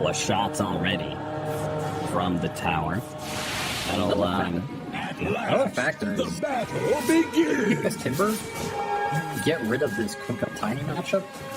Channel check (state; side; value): identical; both; correlation 1.00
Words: of shots already from the tower. That'll, Another factor is The battle begins! this Timber, get rid of this Kunkka Tiny matchup